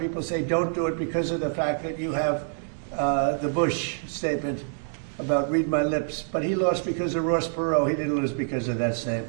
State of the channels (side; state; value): left; silent; digital silence